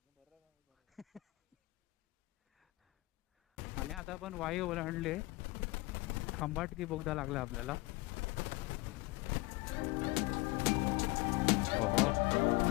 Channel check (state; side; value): quieter; right; 22.7 dB